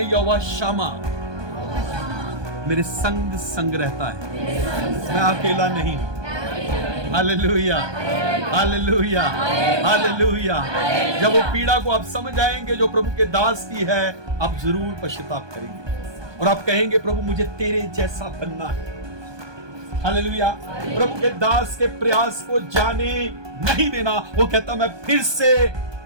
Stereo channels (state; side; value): late; left; 1.2 ms